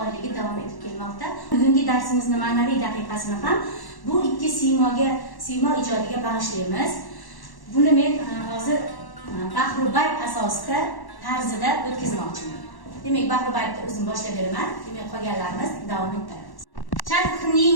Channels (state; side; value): late; right; 1.1 ms